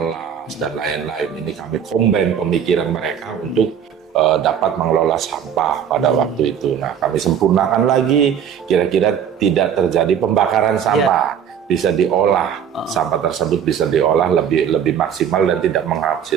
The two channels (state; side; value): quieter; left; 8.4 dB